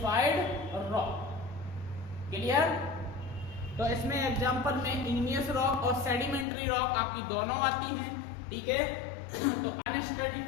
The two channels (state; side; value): drops out; right; at 6.5 s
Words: रॉक। क्लियर? तो इसमें एग्जांपल में इग्नियस रॉक और सेडिमेंट्री रॉक आपकी दोनों आती हैं, ठीक है। तो